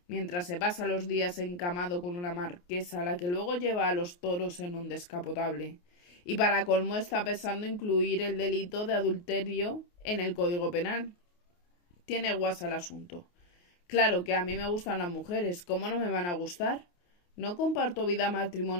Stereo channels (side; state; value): right; late; 28 ms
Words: mientras se pasa los días encamado con una marquesa a la que luego lleva a los toros en un descapotable. Y para colmo está pensando incluir el delito de adulterio en el Código Penal. Tiene guasa el asunto. Claro que a mí me gustan las mujeres, ¿cómo no me van a gustar? No comparto vida